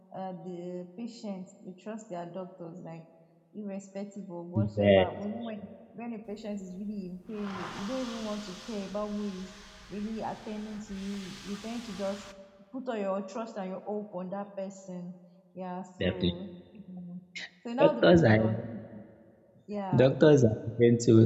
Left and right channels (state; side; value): identical; both; correlation 1.00